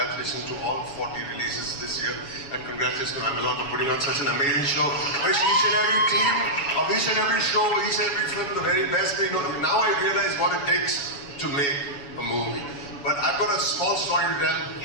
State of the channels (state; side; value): late; right; 7.1 ms